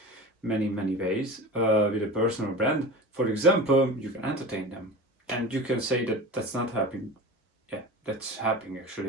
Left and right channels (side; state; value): both; normal; correlation 0.32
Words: ways with a personal brand. For example, you can entertain them, and you can say that that's not helping. Yeah, that's happening actually,